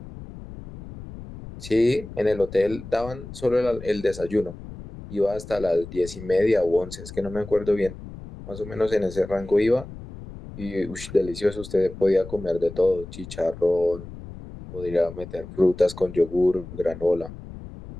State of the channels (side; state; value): left; noise; rumble, 14 dB below the sound